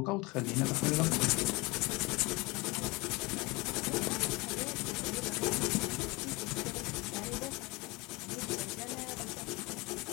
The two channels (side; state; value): right; quieter; 25.0 dB